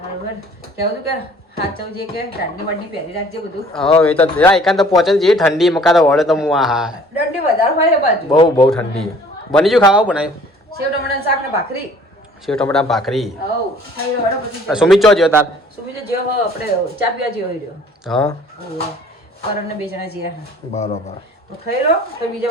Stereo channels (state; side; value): normal; both; correlation 0.54